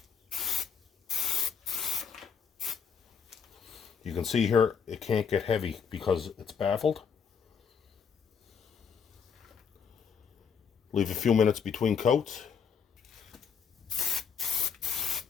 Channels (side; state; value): right; quieter; 6.7 dB